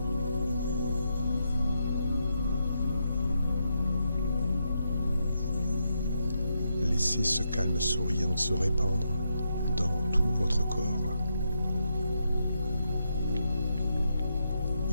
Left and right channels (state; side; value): inverted; both; correlation -0.82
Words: Laissez ce calme souriant se répandre dans tout votre corps.